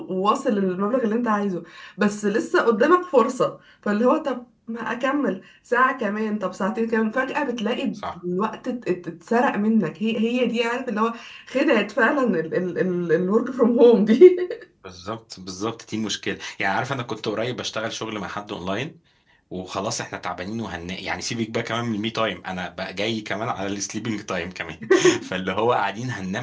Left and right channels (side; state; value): both; identical; correlation 1.00